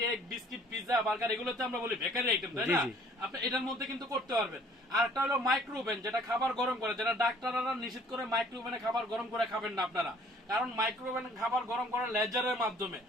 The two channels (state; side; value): normal; both; correlation 0.55